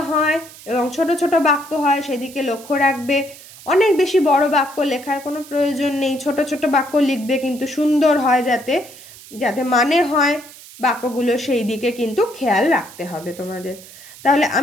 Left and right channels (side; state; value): right; noise; hiss, 19 dB below the sound